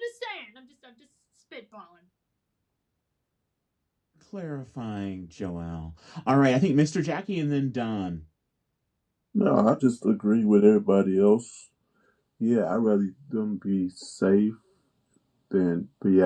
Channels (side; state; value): both; identical; correlation 1.00